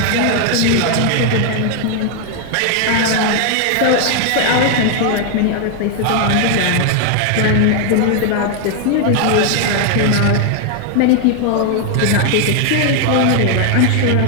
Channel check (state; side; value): different; both; correlation 0.00